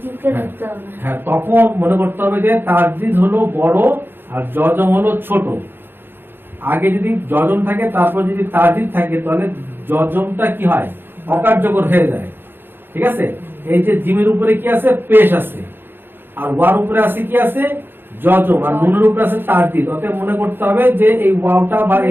ধরতে হবে। হ্যাঁ, তখন মনে করতে হবে যে তাসদিদ হলো বড় আর জজম হলো ছোট। আগে যদি জজম থাকে তারপর যদি তাসদিদ থাকে তাহলে জজমটা কি হয়, অকার্যকর হয়ে যায়, ঠিক আছে? এই যে জিমের উপরে কি আছে, পেশ আছে, আর ওয়ার উপরে আছে কি আছে, জজম, আর নুনের উপরে আছে তাসদিদ। অতএব মনে করতে হবে যে এই ওয়াওটা বা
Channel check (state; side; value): late; left; 0.10 ms